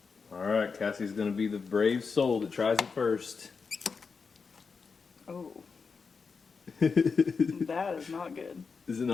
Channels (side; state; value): right; quieter; 5.1 dB